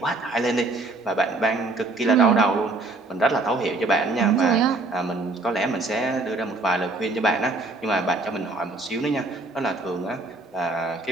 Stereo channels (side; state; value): left; quieter; 3.1 dB